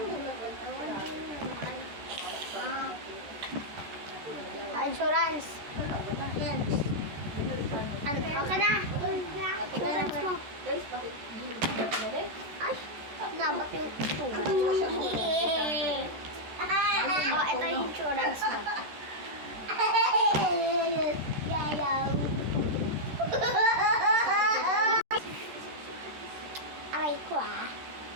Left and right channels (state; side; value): late; left; 14 ms